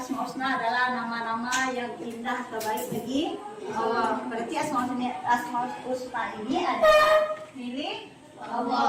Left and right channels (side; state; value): both; identical; correlation 1.00